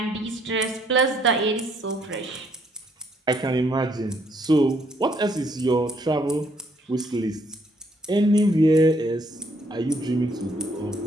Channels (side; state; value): both; normal; correlation 0.68